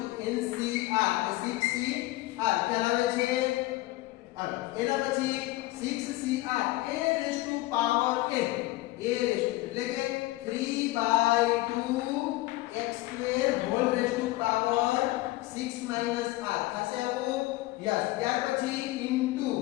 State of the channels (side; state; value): right; quieter; 18.7 dB